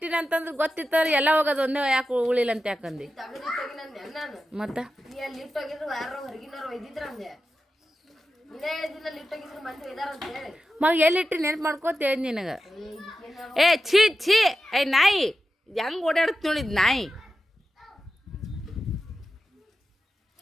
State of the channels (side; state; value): both; normal; correlation 0.92